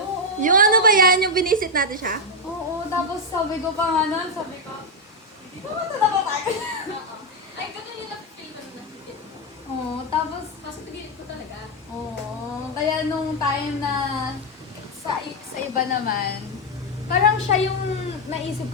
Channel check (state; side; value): normal; both; correlation 0.03